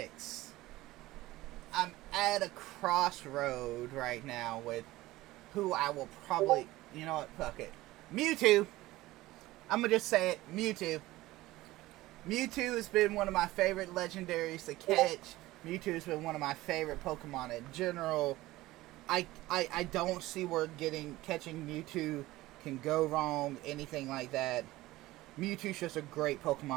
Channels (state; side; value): quieter; left; 17.8 dB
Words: I'm at a crossroad right now with who I will probably... You know what? Fuck it. Mewtwo. I'm going to just say it. Mewtwo. Mewtwo has been one of my favorite legendaries to catch. Mewtwo has been one of my favorite Pokemon in general. I don't see where catching Mewtwo can go wrong, anything like that. Mewtwo's just a great